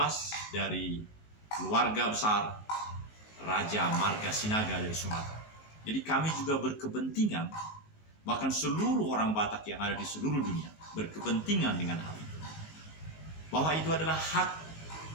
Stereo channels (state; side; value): late; right; 19 ms